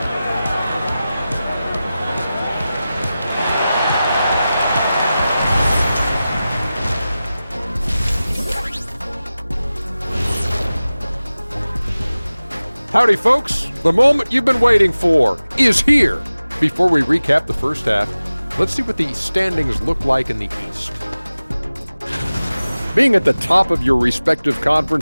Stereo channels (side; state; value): both; inverted; correlation -0.96